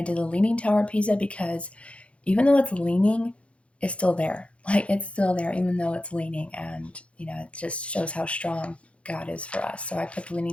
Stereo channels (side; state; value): right; late; 0.061 ms